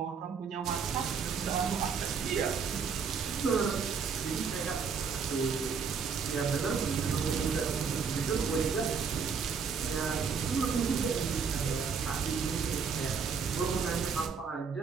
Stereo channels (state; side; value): quieter; left; 5.9 dB